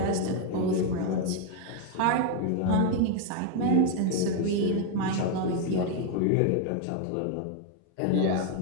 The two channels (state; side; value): different; both; correlation 0.01